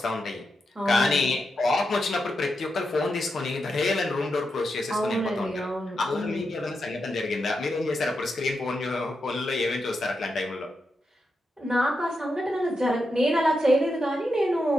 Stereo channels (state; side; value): normal; both; correlation 0.86